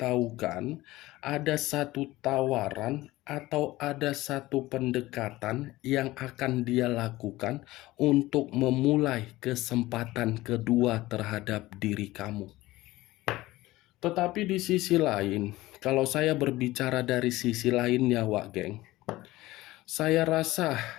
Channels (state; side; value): quieter; right; 18.0 dB